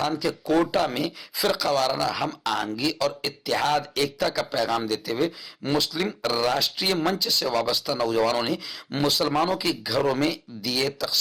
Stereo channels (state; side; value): identical; both; correlation 1.00